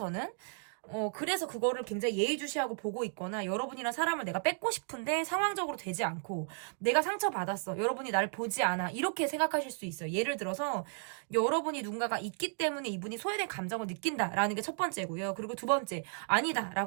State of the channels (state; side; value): silent; left; 55 dB below the other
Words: 그래서 그거를 굉장히 예의주시하고 보고 있거나, 여러분이랑 사람을 내가 뺏고 싶은데 상황적으로 되지 않고 내가 상처받았어, 여러분이 날 보지 않아, 이렇게 생각하실 수 있어요. 예를 들어서 여러분이 누군가가 있기 때문에 이분이 소외된 감정을 느낀다라는 게 첫 번째고요. 그리고 두 번째, 아니다